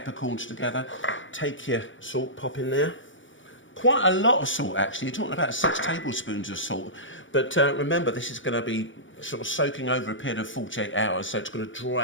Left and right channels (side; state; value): right; late; 0.56 ms